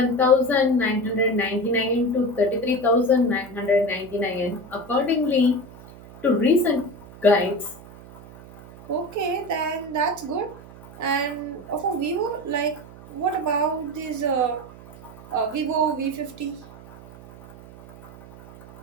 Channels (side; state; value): right; noise; hum, 19 dB below the sound